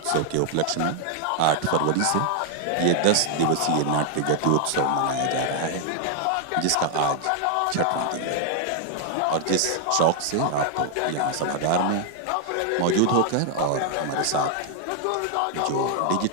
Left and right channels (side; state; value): both; different; correlation 0.00